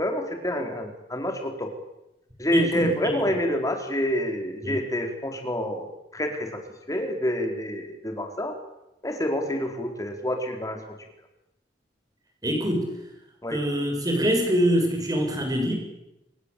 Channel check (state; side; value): normal; both; correlation 0.64